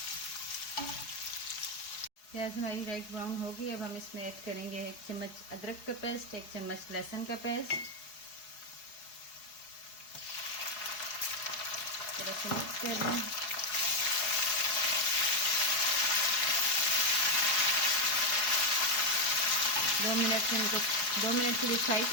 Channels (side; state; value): right; late; 4.8 ms